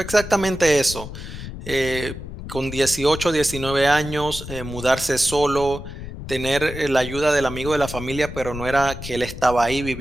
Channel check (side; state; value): left; noise; rumble, 10 dB below the sound